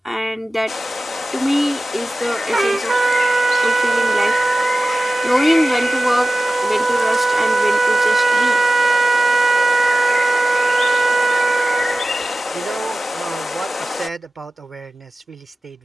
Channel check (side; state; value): both; normal; correlation 0.96